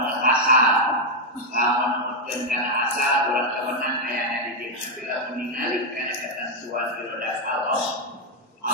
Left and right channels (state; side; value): normal; both; correlation 0.01